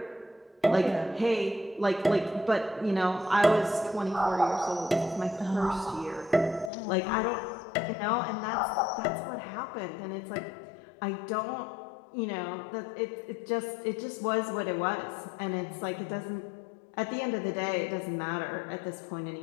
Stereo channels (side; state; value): right; drops out; at 6.7 s